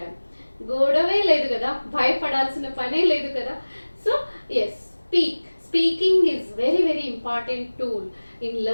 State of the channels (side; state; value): both; inverted; correlation -1.00